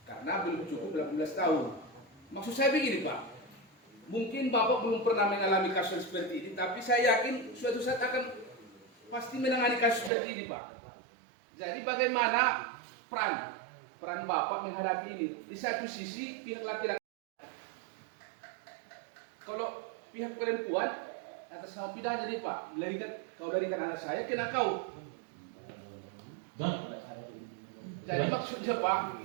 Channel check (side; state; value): left; drops out; at 10.1 s